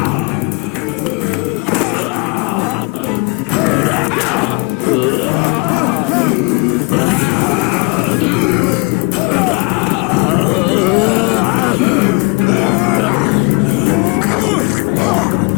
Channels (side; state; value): right; quieter; 29.7 dB